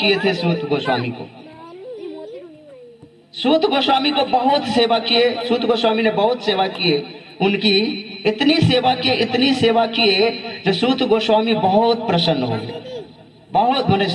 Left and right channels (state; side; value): identical; both; correlation 1.00